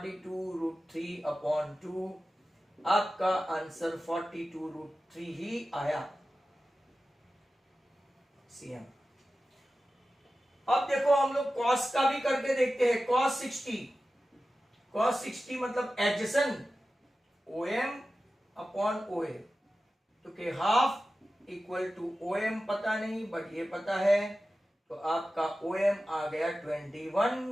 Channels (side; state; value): both; normal; correlation 0.94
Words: √3 upon 2, आपका आंसर 42 √3 ही आया CM। अब देखो हम लोग cos का भी करके देखते हैं। cos cos 60 मतलब एडजेसेंट OM अपॉन OA, तो के हाफ इक्वल टू OM पता नहीं बट ये पता है, तो आपका OM आ गया